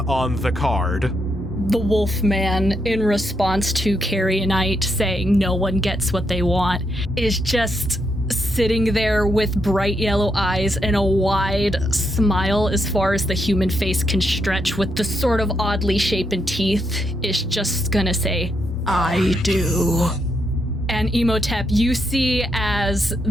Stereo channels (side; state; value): both; normal; correlation 0.80